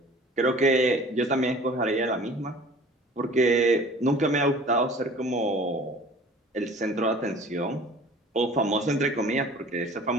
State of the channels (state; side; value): normal; both; correlation 0.46